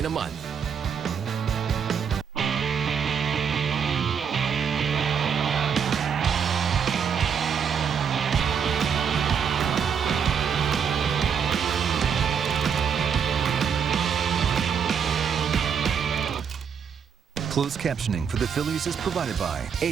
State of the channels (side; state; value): left; quieter; 7.1 dB